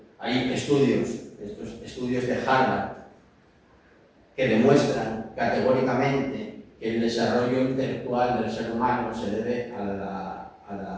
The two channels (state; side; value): identical; both; correlation 1.00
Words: Hay estudios, estos estudios de Harvard, que demuestran categóricamente que el desarrollo intelectual del ser humano se debe a la